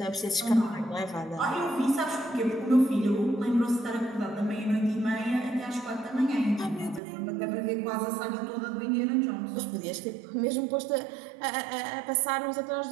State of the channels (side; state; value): left; drops out; at 7.0 s